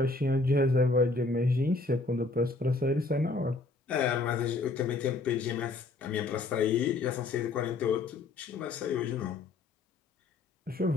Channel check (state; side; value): quieter; right; 3.5 dB